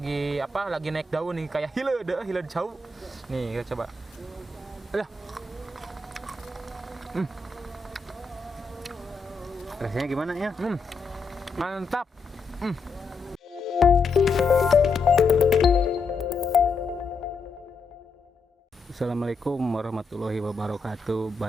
lagi naik daun nih, kayak hileud jauh. Nih, kita coba. Alah. rasanya gimana ya? Mantap. Assalamualaikum warahmatullahi wabarakatuh.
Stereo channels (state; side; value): quieter; right; 3.8 dB